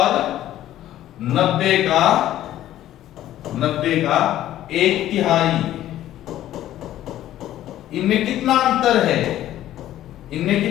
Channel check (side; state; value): right; quieter; 13.1 dB